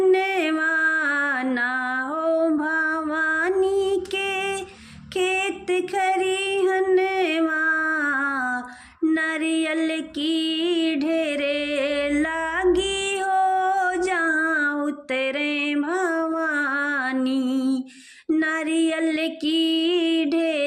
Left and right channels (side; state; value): both; identical; correlation 1.00